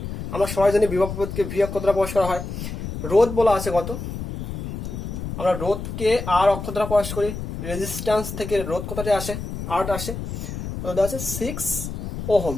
আমরা সবাই জানি বিভব প্রভেদকে ভি অক্ষর দ্বারা প্রকাশ করা হয়। রোধ বলা আছে কত? আমরা রোধকে আর অক্ষর দ্বারা প্রকাশ করি। রেজিস্ট্যান্স থেকে রোধ কতটা আসে? আর আসে। রোধ আছে 6 ওহম।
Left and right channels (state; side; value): noise; left; rumble, 7 dB below the sound